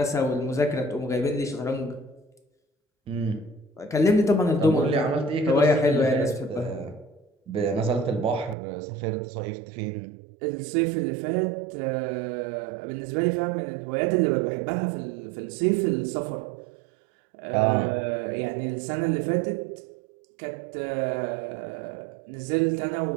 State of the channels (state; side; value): drops out; left; at 8.6 s